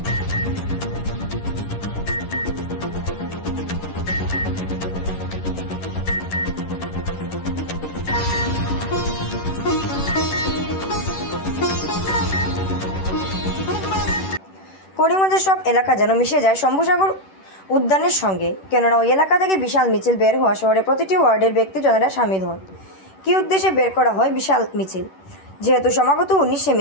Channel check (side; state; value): right; late; 10 ms